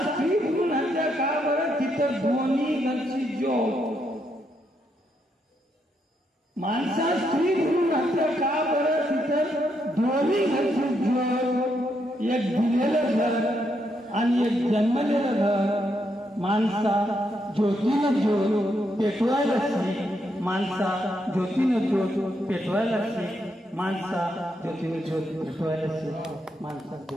स्त्री भ्रूण हत्या का बरं? तिथं दोन्ही घरची ज्योत. माणसा स्त्री भ्रूण हत्या का बरं? तिथं दोन्ही घरची ज्योत. एक दिलेलं घर आणि एक जन्मलेलं घर. माणसा ज्योतीनं ज्योत पेटवायला शिक, माणसा ज्योतीनं ज्योत पेटवायला शिक, माणसा ज्योतीनं ज्योत पेटवायला शिक, माणसा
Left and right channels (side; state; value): both; normal; correlation 0.78